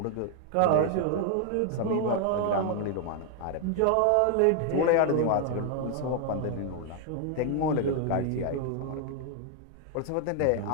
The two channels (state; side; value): different; both; correlation 0.00